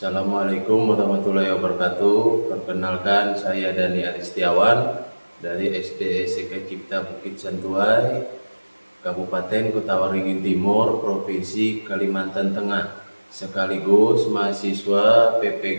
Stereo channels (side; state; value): both; inverted; correlation -1.00